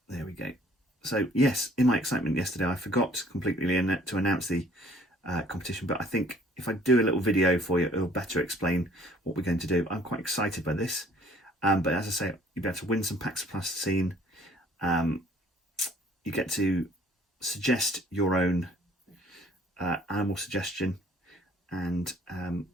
There we go. So yes, in my excitement yesterday, I forgot completely to announce the competition, but I think if I do a little video for you, it'll better explain what we're going to do. I'm quite excited by this. But as I say, you'll be able to win some packs of plasticine. You get to suggest your own animal suggestion, and I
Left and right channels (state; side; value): normal; both; correlation 0.56